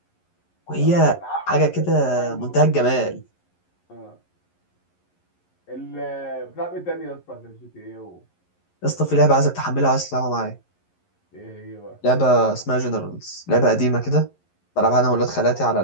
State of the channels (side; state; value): right; late; 11 ms